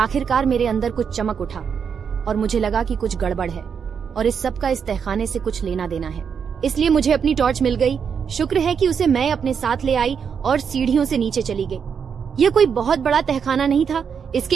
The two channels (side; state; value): left; quieter; 6.8 dB